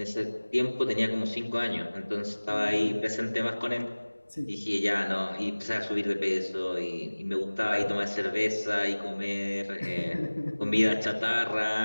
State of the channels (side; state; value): both; inverted; correlation -1.00